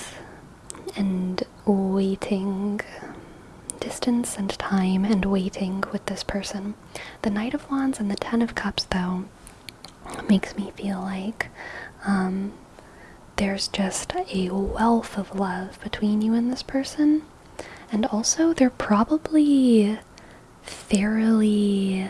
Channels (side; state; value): both; identical; correlation 1.00